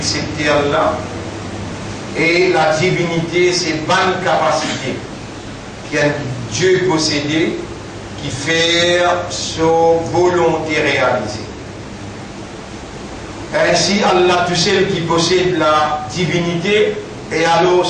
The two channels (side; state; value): both; identical; correlation 1.00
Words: Allah. Et la divinité, c'est une bonne capacité qu'un Dieu possédé qui fait sa volonté réalisée. Ainsi, Allah, tout seul qui possède la divinité, et alors